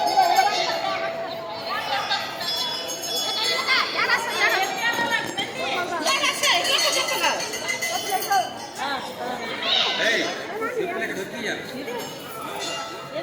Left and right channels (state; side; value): identical; both; correlation 1.00